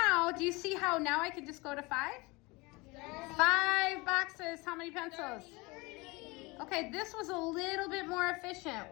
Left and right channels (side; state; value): right; quieter; 24.6 dB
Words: do you see how now I can just go to 5? 5 boxes. How many pencils? 30. Okay, this was a little bit more efficient,